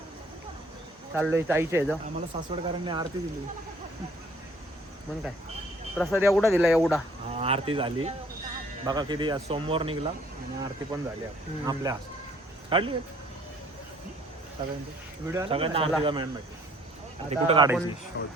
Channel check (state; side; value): normal; both; correlation 0.59